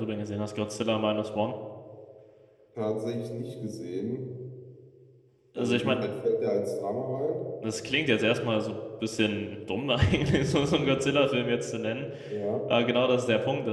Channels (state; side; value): identical; both; correlation 1.00